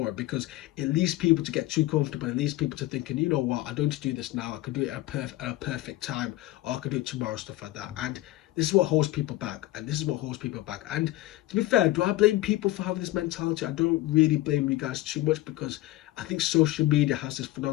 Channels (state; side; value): quieter; right; 16.7 dB